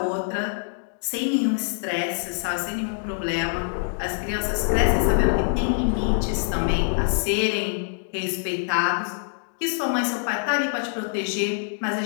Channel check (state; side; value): silent; right; digital silence